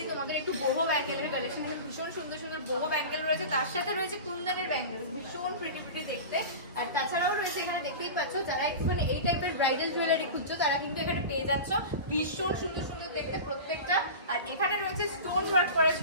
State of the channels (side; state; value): both; inverted; correlation -0.30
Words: তোমাদের একটু বহু ব্যাঙ্গেলের কালেকশন, ভীষণ সুন্দর সুন্দর বহু ব্যাঙ্গেল রয়েছে, তার সাথে রয়েছে কুন্দনের ব্যাঙ্গেল, ভীষণ প্রিটি প্রিটি দেখতে। আর তাছাড়াও রয়েছে এখানে দেখতেই পাচ্ছ, যারা একটুখানি এই টাইপের ব্রাইডাল জুয়েলারি খুঁজছো তারা কিন্তু এখানে পেয়ে যাচ্ছ, ভীষণ সুন্দর সুন্দর দেখতে প্রত্যেকটা। আর এখানে রয়েছে স্টোন ওয়ার্ক করা